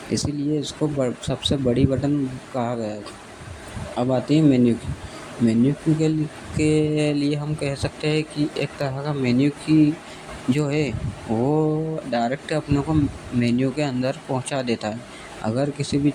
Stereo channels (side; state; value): both; identical; correlation 1.00